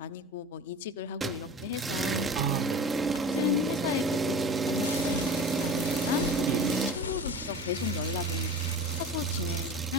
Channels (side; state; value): both; normal; correlation 0.35